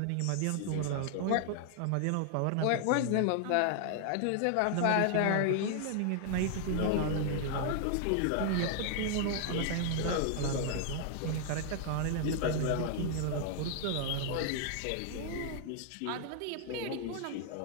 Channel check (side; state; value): both; different; correlation 0.00